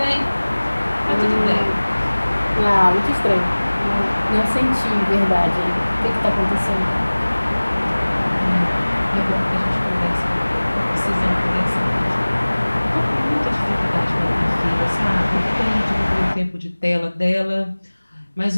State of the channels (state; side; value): inverted; both; correlation -1.00